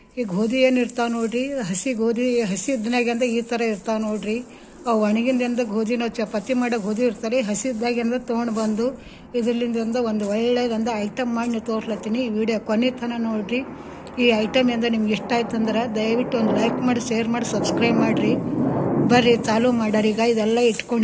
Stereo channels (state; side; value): identical; both; correlation 1.00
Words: ಈ ಗೋಧಿ ಏನು ಇರ್ತಾವೆ ನೋಡಿರಿ, ಹಸಿ ಗೋಧಿ, ಹಸಿ ಇದ್ದನಾಗಿಂದ ಈ ಥರ ಇರ್ತಾವೆ ನೋಡಿರಿ. ಅವು ಒಣಗಿಂದಿಂದ ಗೋಧಿ ನಾವು ಚಪಾತಿ ಮಾಡೋ ಗೋಧಿ ಇರ್ತಾರೆ, ಹಸಿದ್ದಾಗಿಂದ ತೊಗೊಂಡು ಬಂದು ಇದರಿಂದ ಒಂದು ಒಳ್ಳೆಯದಂದ ಐಟಮ್ ಮಾಡಿ ನೀವು ತೋರ್ಲತ್ತೀನಿ. ಈ ವಿಡಿಯೋ ಕೊನೆ ತನಕ ನೋಡಿರಿ. ಈ ಐಟಮ್ ಇಂದ ನಿಮ್ಗೆ ಇಷ್ಟ ಆಯ್ತು ಅಂದ್ರೆ ದಯವಿಟ್ಟು ಒಂದು ಲೈಕ್ ಮಾಡಿ, ಶೇರ್ ಮಾಡಿ, ಸಬ್ಸ್ಕ್ರೈಬ್ ಮಾಡಿರಿ. ಬರ್ರಿ ಚಾಲೂ ಮಾಡ್ಯಾರ. ಈಗ ಇದೆಲ್ಲ